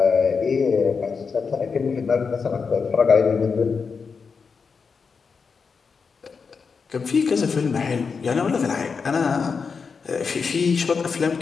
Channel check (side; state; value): right; quieter; 5.4 dB